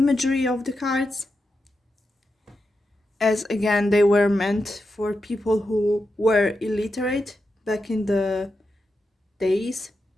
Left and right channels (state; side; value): normal; both; correlation 0.88